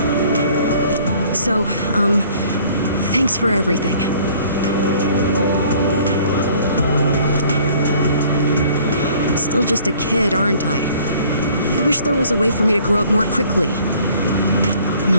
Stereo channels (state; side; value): inverted; both; correlation -0.55